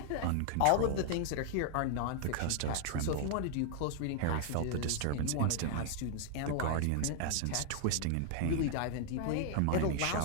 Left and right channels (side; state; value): both; different; correlation 0.00